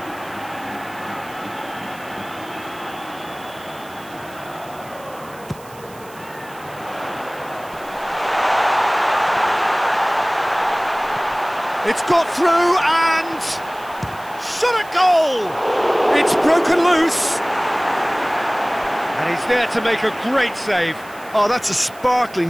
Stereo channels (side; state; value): right; noise; hiss, 22 dB below the sound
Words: It's got through and shot at goal! It's broken loose. And he's there to make a great save. Oh, that's a